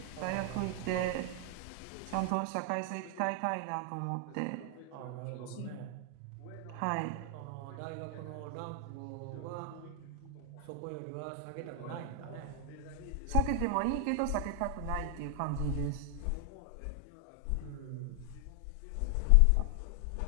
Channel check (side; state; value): both; different; correlation 0.00